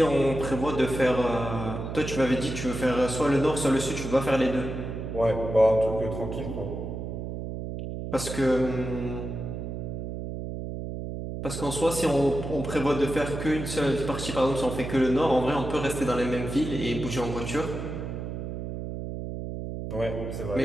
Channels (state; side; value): noise; right; hum, 6 dB below the sound